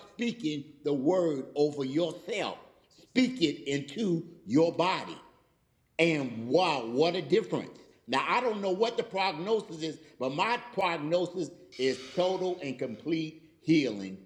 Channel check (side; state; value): both; identical; correlation 1.00